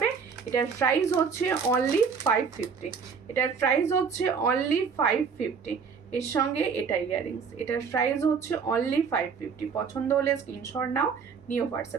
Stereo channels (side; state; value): left; quieter; 5.9 dB